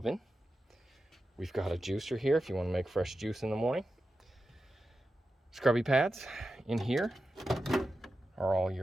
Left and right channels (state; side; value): normal; both; correlation 0.91